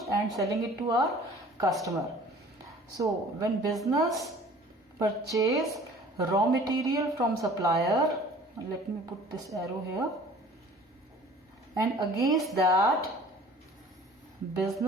and selling it to our customer. So when business purchase raw material from supplier, let me put this arrow here, and against that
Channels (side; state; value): both; normal; correlation 0.48